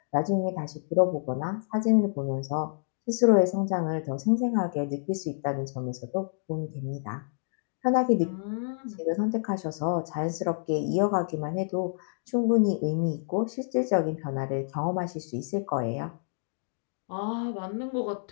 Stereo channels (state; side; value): silent; right; digital silence